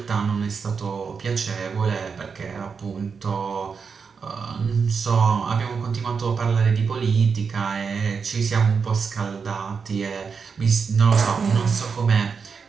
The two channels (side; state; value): left; quieter; 5.6 dB